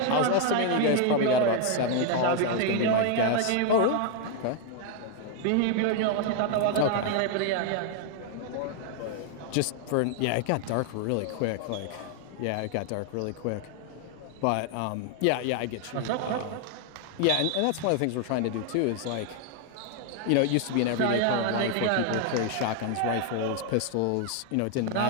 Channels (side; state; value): both; different; correlation 0.00